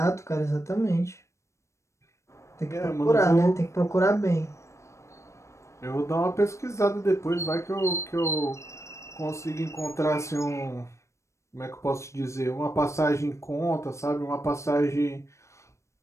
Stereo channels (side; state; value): right; late; 0.14 ms